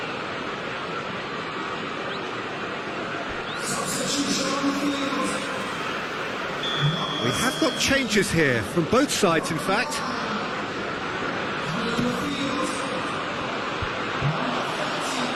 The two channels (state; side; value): identical; both; correlation 1.00